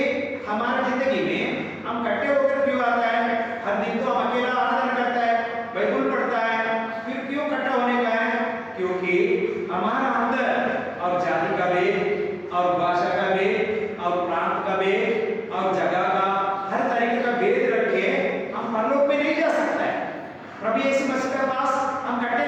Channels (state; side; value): identical; both; correlation 1.00